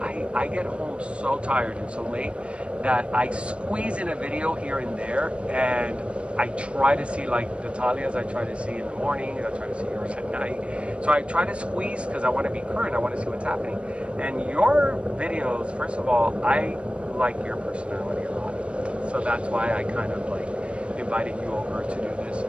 I get home so tired and so late that I squeeze in a video here and there, and I try to see, like the Talias, I try to see in the morning, I try to see yours at night. So I try to squeeze because I want to be current, I want to see what's happening. And your videos, first of all, I like your personality a lot. So that's why I kind of like invited you over to do this.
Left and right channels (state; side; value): late; left; 0.059 ms